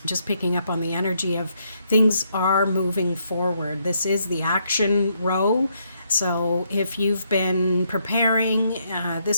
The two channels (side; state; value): both; inverted; correlation -0.75